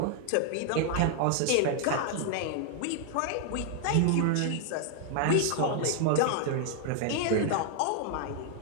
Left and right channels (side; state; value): both; different; correlation 0.00